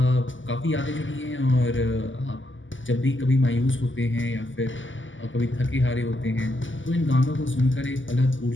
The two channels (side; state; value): right; late; 0.56 ms